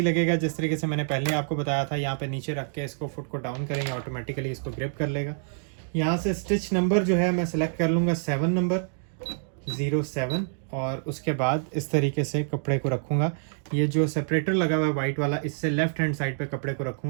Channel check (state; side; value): silent; left; digital silence